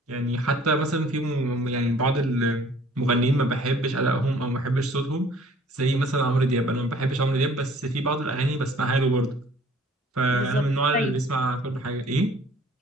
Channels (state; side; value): normal; both; correlation 0.54